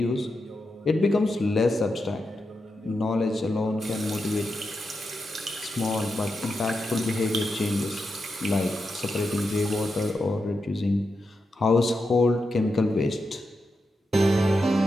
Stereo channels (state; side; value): normal; both; correlation 0.87